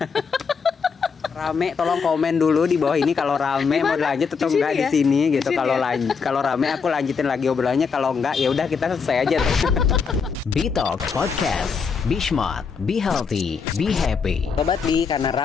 Rame, tolong komen dulu di bawah ini kalau rame mau lanjut atau enggak di sini gitu. Kalau rame aku lanjutin lagi obrolannya, kalau enggak ya udah kita selesai aja. Bitalk Podcast. Be smart, be healthy, be happy. Sobat Bi, karena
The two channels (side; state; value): right; quieter; 5.6 dB